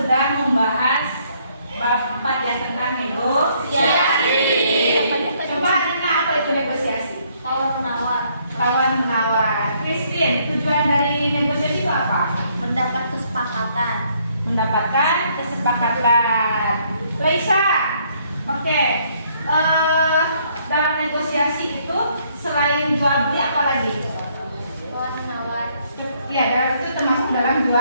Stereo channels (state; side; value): inverted; both; correlation -0.68